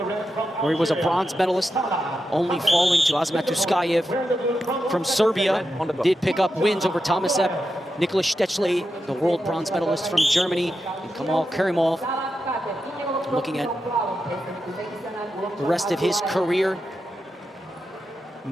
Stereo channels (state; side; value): normal; both; correlation 0.88